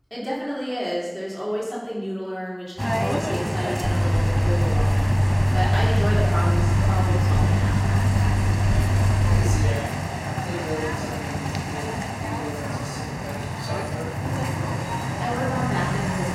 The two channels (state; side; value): identical; both; correlation 1.00